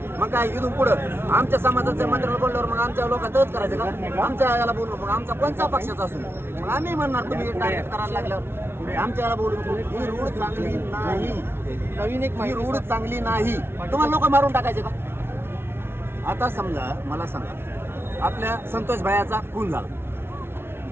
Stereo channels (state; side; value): late; left; 0.12 ms